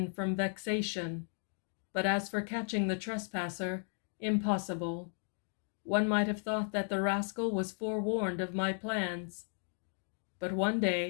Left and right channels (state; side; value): silent; right; 54 dB below the other